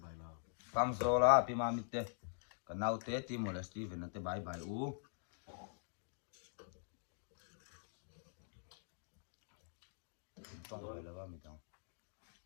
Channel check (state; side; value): silent; right; digital silence